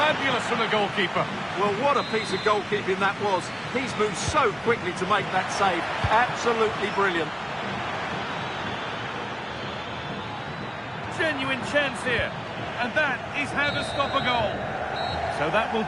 from the goalkeeper. Well, what a piece of goalkeeping that was. He's moved so quickly to make that save. Absolutely brilliant. Genuine chance here. And that is how to stop a goal. So that will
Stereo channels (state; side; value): identical; both; correlation 1.00